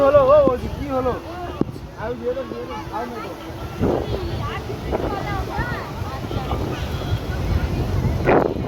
ও জি কি হলো আই দিয়ে দাও আই না দাও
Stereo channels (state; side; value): identical; both; correlation 1.00